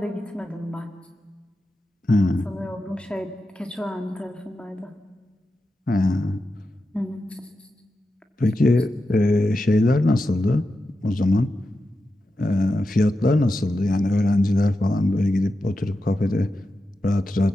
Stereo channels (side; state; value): both; normal; correlation 0.90